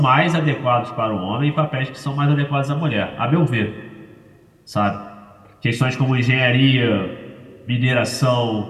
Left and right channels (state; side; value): identical; both; correlation 1.00